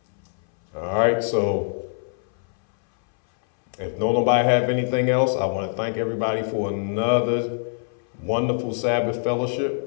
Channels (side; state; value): right; silent; 61 dB below the other